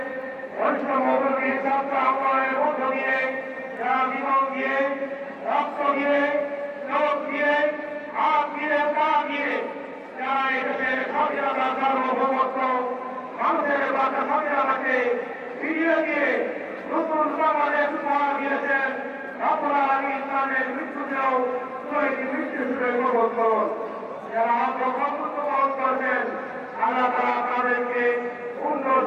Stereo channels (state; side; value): identical; both; correlation 1.00